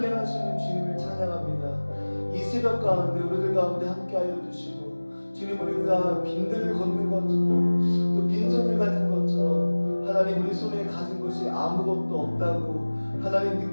행하시는 주님을 찬양합니다. 이 새벽 가운데 우리들 가운데 함께하여 주시고 주님, 우리가 빈들을 걷는 것처럼 또 빈손을 가진 것처럼 하나님 우리 손에 가진 것이 아무것도 없다고 하나님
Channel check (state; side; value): inverted; both; correlation -1.00